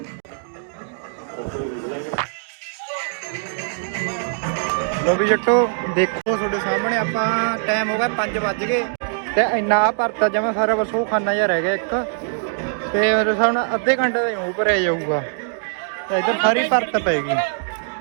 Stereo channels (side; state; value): left; silent; digital silence